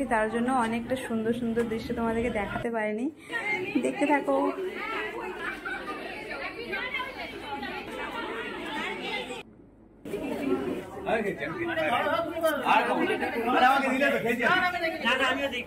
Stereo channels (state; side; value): identical; both; correlation 1.00